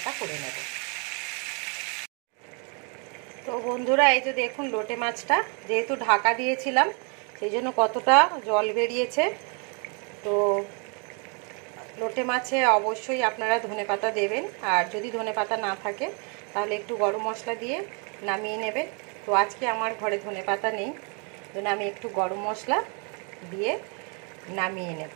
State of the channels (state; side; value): quieter; left; 36.1 dB